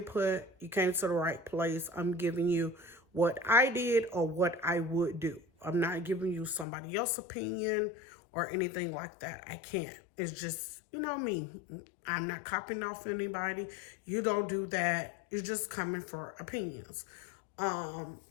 you came to the right place. I'm giving you what I did or what I would do. I'm not giving you somebody else's opinion or anything like that. I can't. It's just, you know me. I'm not copying off anybody. You don't do that. You're just coming for opinions. To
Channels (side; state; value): right; drops out; at 6.7 s